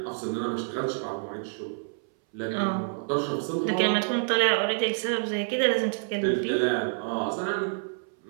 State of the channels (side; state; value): left; silent; 60 dB below the other